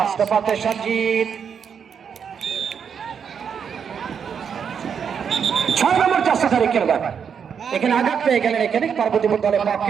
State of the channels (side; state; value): left; quieter; 7.1 dB